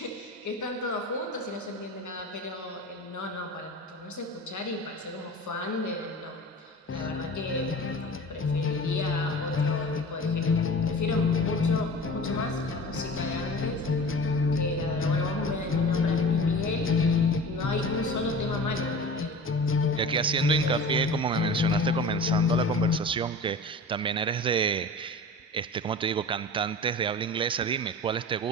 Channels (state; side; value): normal; both; correlation 0.36